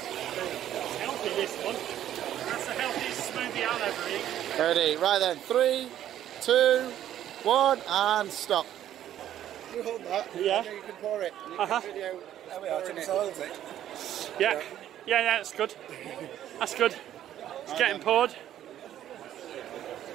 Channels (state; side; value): quieter; left; 11.6 dB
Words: It's healthy, this one. That's the healthiest smoothie I'll ever eat. Ready, right then, 3, 2, 1, and stop. You hold that. Yeah. You can pour it. You can video. There we are. Yeah, that's good. That's good. It's getting poured.